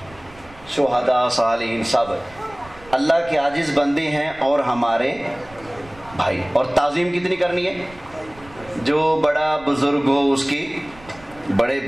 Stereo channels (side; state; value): right; noise; rumble, 23 dB below the sound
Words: شہداء، صالحین سب اللہ کے عاجز بندے ہیں اور ہمارے بھائی۔ اور تعظیم کتنی کرنی ہے؟ جو بڑا بزرگ ہو اس کی بڑے